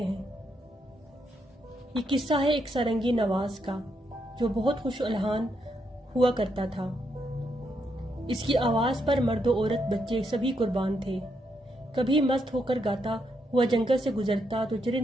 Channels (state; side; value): normal; both; correlation 0.79